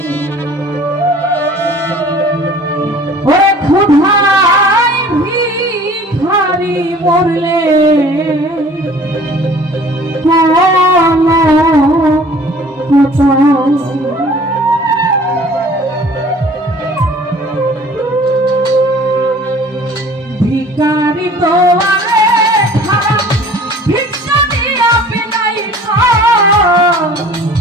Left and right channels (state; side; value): normal; both; correlation 0.49